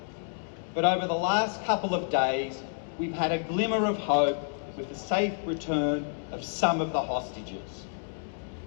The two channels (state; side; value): silent; right; digital silence